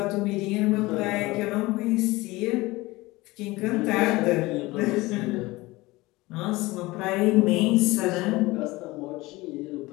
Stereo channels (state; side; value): quieter; right; 20.8 dB